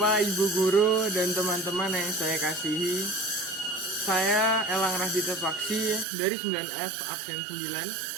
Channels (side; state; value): left; drops out; at 6.1 s